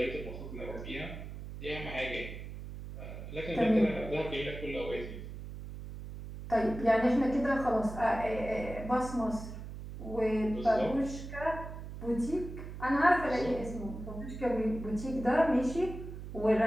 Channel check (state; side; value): noise; right; hum, 10 dB below the sound